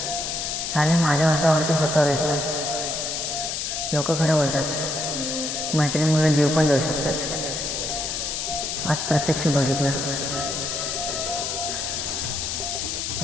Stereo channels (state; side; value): noise; left; hiss, 2 dB below the sound